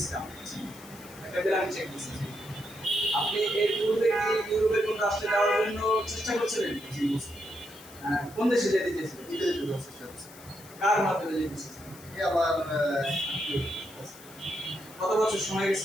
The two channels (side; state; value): left; noise; hiss, 20 dB below the sound